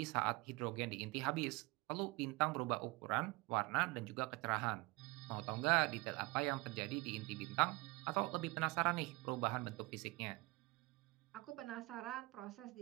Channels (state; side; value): quieter; left; 23.4 dB